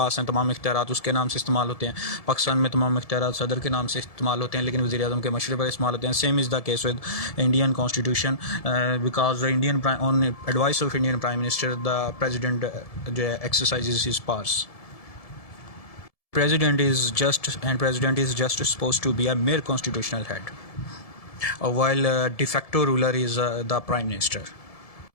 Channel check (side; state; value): right; late; 1.7 ms